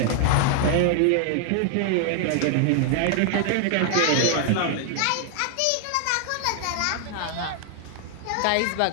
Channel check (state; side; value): different; both; correlation 0.00